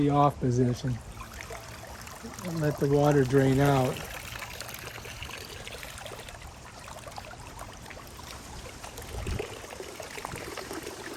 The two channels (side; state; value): both; identical; correlation 1.00